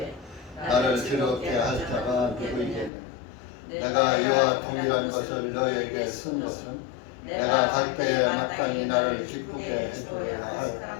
나를 즐겁게 할 자가 누구이겠느냐. 내가 이와 동일한 것을 너에게 쓴 것은 내가 갈 때에 마땅히 나를 기쁘게 해주어야 할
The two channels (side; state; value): right; drops out; at 2.9 s